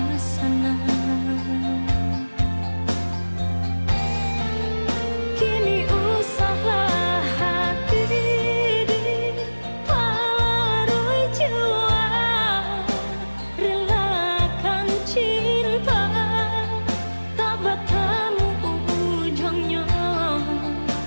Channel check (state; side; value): inverted; both; correlation -1.00